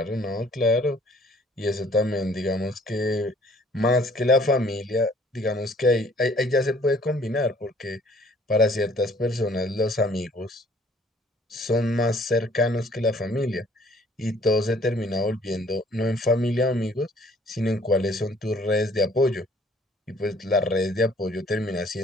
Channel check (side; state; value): both; normal; correlation 0.58